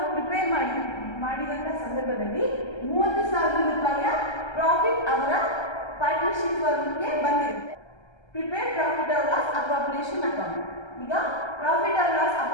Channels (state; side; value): late; right; 1.3 ms